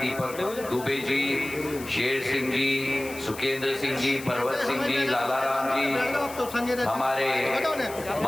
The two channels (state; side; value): noise; left; hiss, 15 dB below the sound